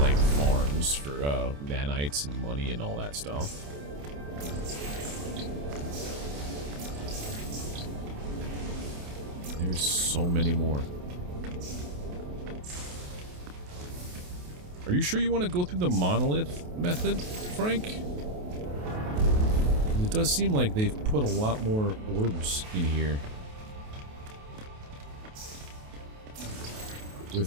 farms for nanites and money and all that stuff. There's so many more. Are you sure you want to go through the monolith method, Frank? It does seem like they've put a lot more orbs in here.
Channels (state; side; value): late; left; 28 ms